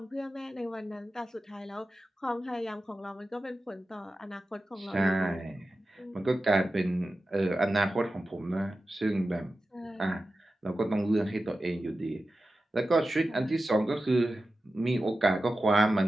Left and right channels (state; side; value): normal; both; correlation 0.93